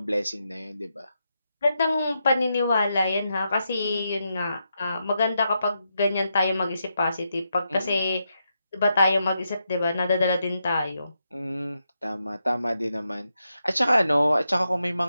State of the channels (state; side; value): inverted; both; correlation -0.84